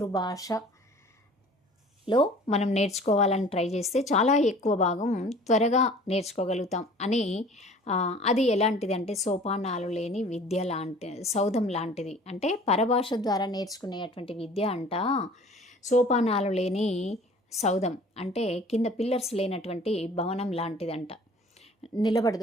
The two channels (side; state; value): both; normal; correlation 0.47